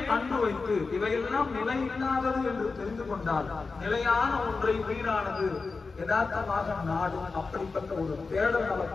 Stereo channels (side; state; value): right; quieter; 4.2 dB